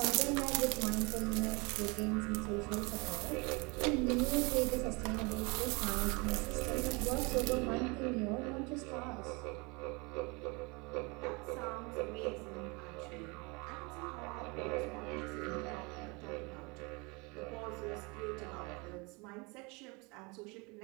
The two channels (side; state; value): left; quieter; 28.4 dB